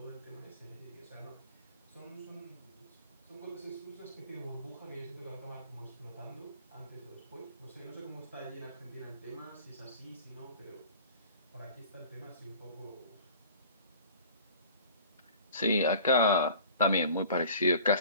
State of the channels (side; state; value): both; inverted; correlation -0.45